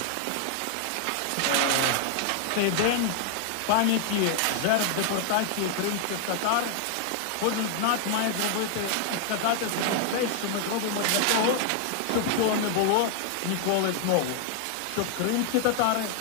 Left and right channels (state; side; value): different; both; correlation 0.00